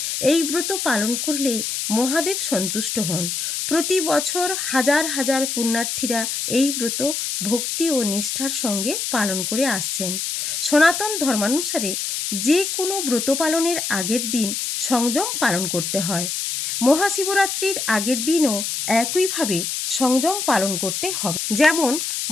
এই ব্রত পালন করলে মহাদেব সন্তুষ্ট হন। প্রতি বছর হাজার হাজার পুণ্যার্থীরা এই ব্রত ভক্তি ও নিষ্ঠার সঙ্গে পালন করে আসছেন। সনাতন ধর্মানুসারে যে কোনো ব্রত পালনের আগের দিন সংযম পালন করতে হয়। মহাশিবরাত্রির আগের দিনও একইভাবে সংযম পালন করতে হবে। যেমন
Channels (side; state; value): left; noise; hiss, 2 dB below the sound